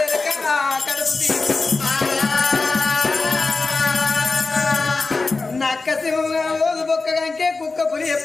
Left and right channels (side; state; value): right; quieter; 3.8 dB